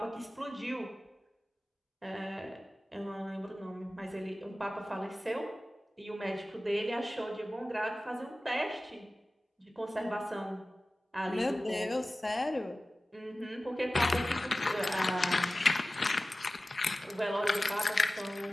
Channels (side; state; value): both; normal; correlation 0.96